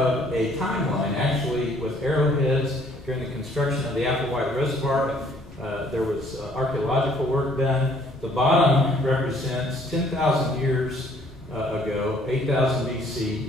a timeline, actually, with arrowheads during the construction of the Applewhite Reservoir. There was archaeological work done. The bottom represents 10,000 years ago, 8,000 BC.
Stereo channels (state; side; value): normal; both; correlation 0.61